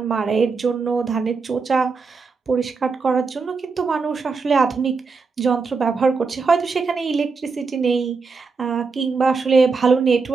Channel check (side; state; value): left; quieter; 4.7 dB